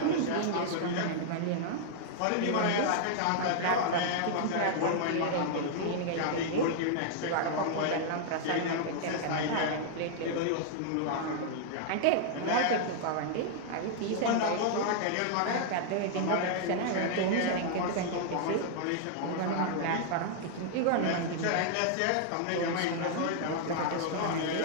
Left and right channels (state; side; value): different; both; correlation -0.01